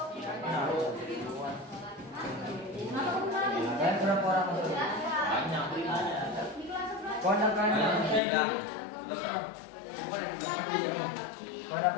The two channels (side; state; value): right; drops out; at 8.2 s